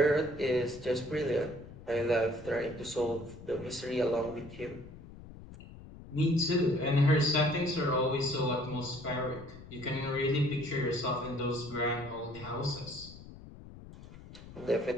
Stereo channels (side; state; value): left; noise; rumble, 16 dB below the sound